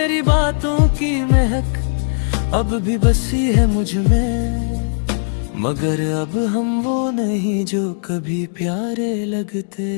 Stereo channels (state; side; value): silent; right; digital silence